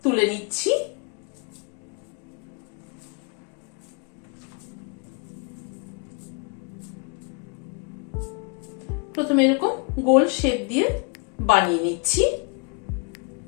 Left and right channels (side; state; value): right; quieter; 33.4 dB